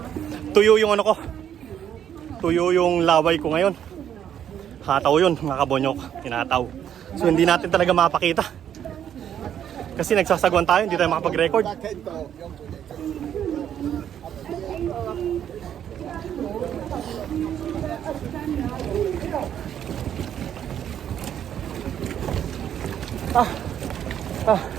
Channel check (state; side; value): quieter; left; 9.7 dB